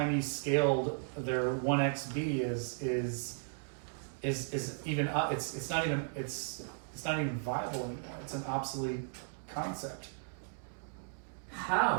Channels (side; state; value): left; silent; digital silence